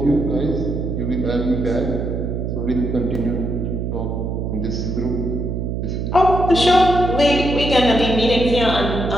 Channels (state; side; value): noise; right; hum, 3 dB below the sound